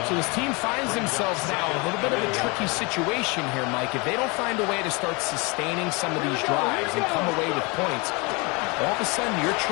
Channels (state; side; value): quieter; right; 28.3 dB